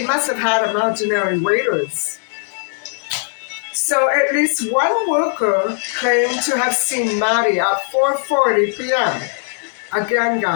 must have had imaginary waiters. So at least one worker claimed to have seen Maddie at 4:40 p.m. Again,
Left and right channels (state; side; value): silent; right; digital silence